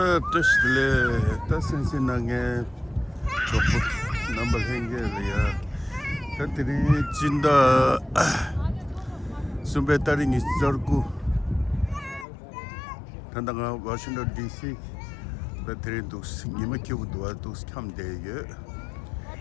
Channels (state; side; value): drops out; right; at 12.2 s